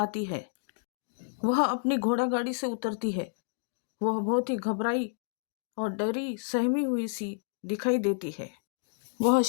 है। वह अपनी घोड़ा गाड़ी से उतरती है। वह बहुत ही घबराई और डरी सहमी हुई सी दिखाई देती है। वह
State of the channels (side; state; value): right; silent; digital silence